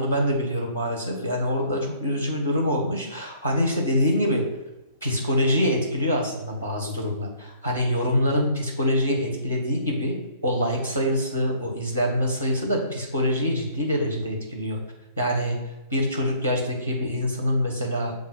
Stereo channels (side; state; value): both; inverted; correlation -0.58